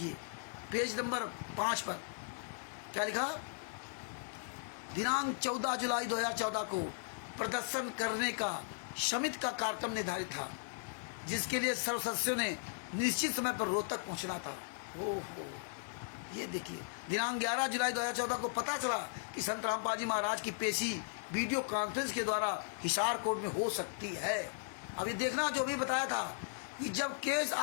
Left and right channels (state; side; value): silent; right; 53 dB below the other